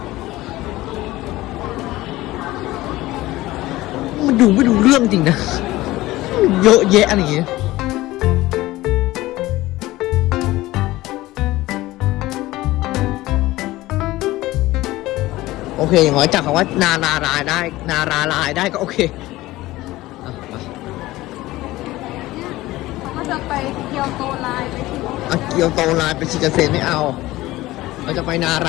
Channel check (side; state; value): right; quieter; 17.8 dB